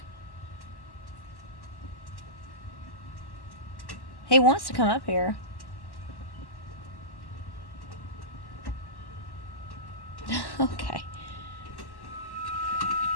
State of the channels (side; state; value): right; late; 1.1 ms